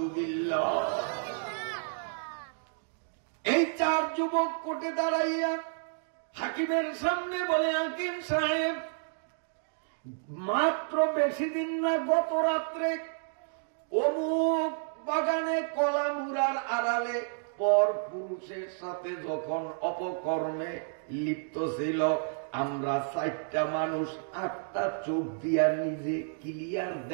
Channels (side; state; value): left; silent; digital silence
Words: এই 4 যুবক কোর্টে দাঁড়াইয়া হাকিমের সামনে বলে, হাকিম সাহেব, মাত্র বেশি দিন না, গত রাত্রে অমুক বাগানে কলামুরার আড়ালে পর পুরুষের সাথে যখন অপকর্মে লিপ্ত ছিল, আমরা 4টা মানুষ 8টা চোখ দিয়া নিজে ক্লিয়ার